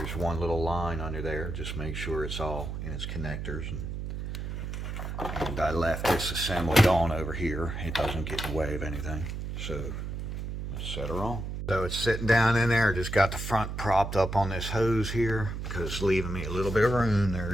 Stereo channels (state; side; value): noise; right; hum, 5 dB below the sound